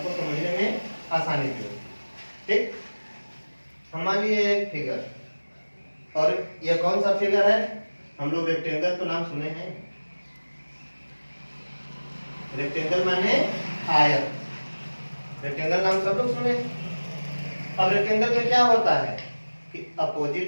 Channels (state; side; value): inverted; both; correlation -1.00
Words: समझने में आसानी भी होती है। ठीक, हम मान लिए एक फिगर, और यह कौन सा फिगर है? हम लोग रेक्टेंगल तो नाम सुने हैं, रेक्टेंगल माने आयत, रेक्टेंगल नाम सब लोग सुने। अब रेक्टेंगल में क्या होता है कि